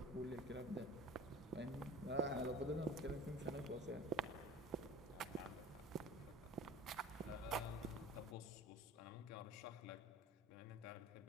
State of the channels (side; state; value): both; normal; correlation 0.41